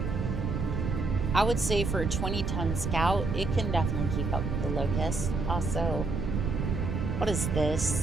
I would say for a 20-ton scout, it can definitely keep up with the Locust. Also, what is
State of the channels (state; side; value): noise; right; rumble, 1 dB below the sound